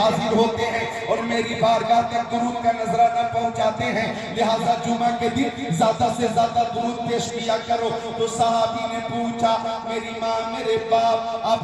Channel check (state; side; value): identical; both; correlation 1.00